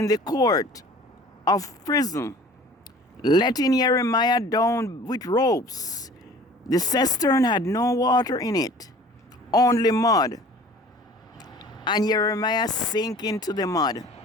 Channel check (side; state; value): both; normal; correlation 0.46